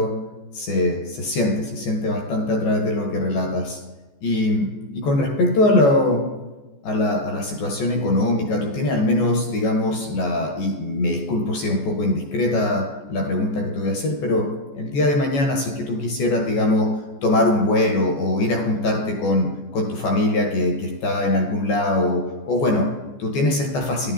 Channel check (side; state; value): right; late; 14 ms